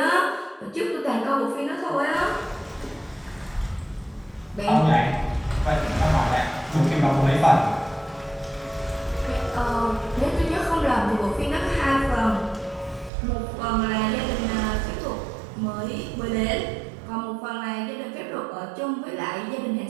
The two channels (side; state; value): left; drops out; at 13.1 s